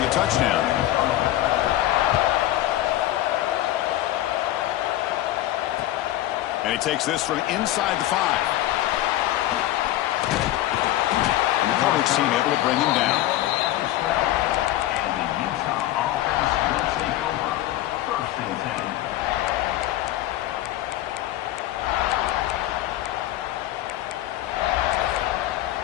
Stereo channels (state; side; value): quieter; right; 14.5 dB